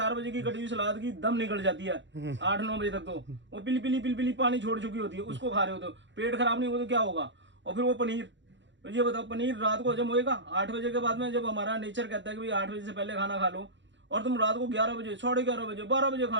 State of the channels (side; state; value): left; late; 0.54 ms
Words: बजे की कटी हुई सलाद की दम निकल जाती है 8-9 बजे तक। तो वो पिली पानी छोड़ चुकी होती है, उसको खा रहे हो तो पेट खराब नहीं होगा तो क्या होगा। और फिर वो पनीर, ये बताओ पनीर रात को हजम होएगा? 8 बजे के बाद में जब हमारा नेचर कहता है कि भाई 8 बजे से पहले खाना खा लो, और तुम रात को 11 बजे 11:30 बजे 12 बजे